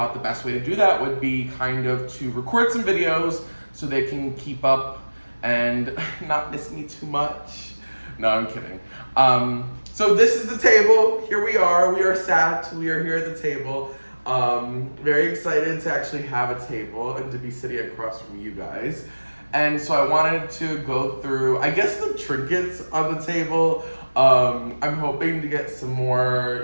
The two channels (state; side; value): inverted; both; correlation -1.00